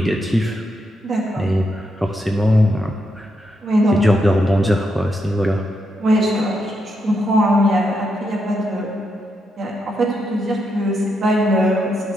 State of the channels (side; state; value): both; normal; correlation 0.82